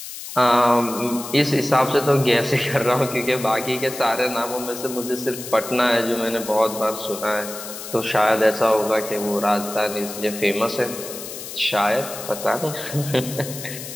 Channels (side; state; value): left; noise; hiss, 10 dB below the sound